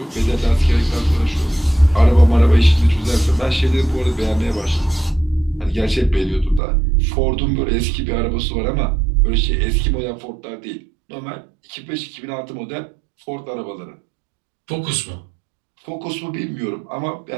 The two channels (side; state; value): left; drops out; at 6.6 s